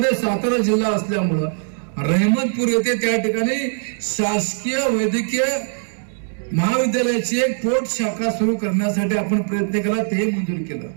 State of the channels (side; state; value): left; silent; digital silence